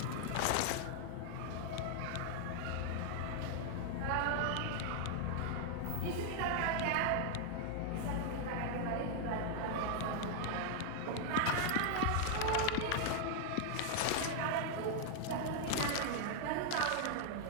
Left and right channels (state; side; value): different; both; correlation 0.00